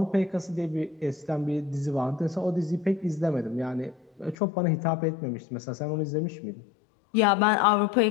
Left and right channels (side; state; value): right; drops out; at 4.4 s